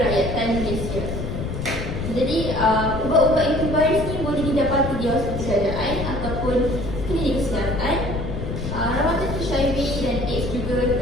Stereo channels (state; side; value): noise; left; rumble, 5 dB below the sound